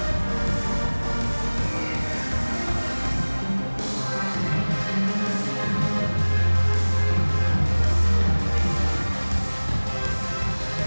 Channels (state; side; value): inverted; both; correlation -1.00